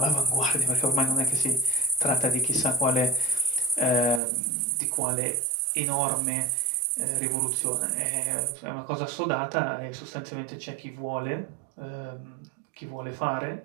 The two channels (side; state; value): left; drops out; at 4.2 s